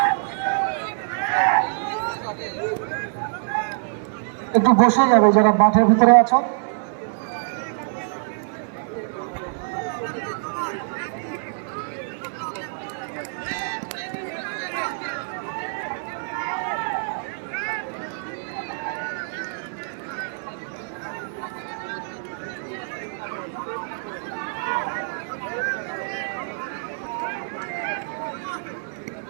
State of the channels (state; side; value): silent; left; 62 dB below the other